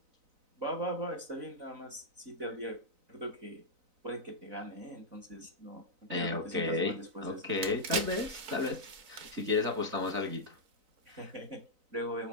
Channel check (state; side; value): late; left; 4.0 ms